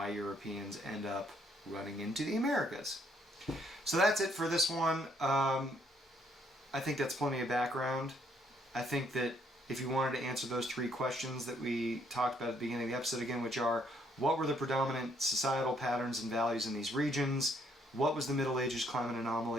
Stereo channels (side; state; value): both; normal; correlation 0.69